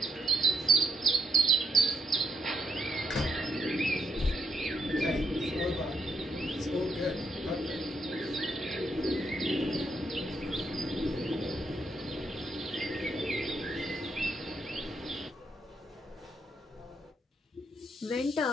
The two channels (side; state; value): both; normal; correlation 0.76